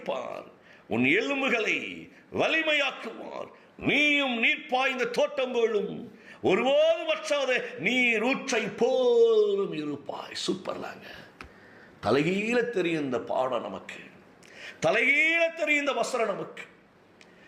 உன் எலும்புகளை வலிமையாக்குவார். நீயும் நீர் பாய்ந்த தோட்டம் போலும் ஒருபோது வற்றாத நீர் ஊற்றை போலும் இருப்பாய். சூப்பர்லாங்க. தலைகீழ தெரியும் இந்த பாடம் நமக்கு, தலைகீழ தெரியும் இந்த வசனம் நமக்கு.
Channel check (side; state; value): both; identical; correlation 1.00